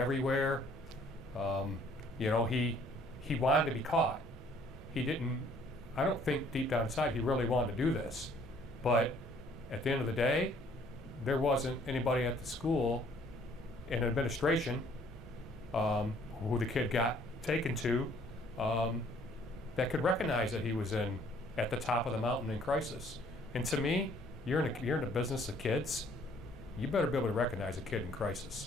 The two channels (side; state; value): both; normal; correlation 0.60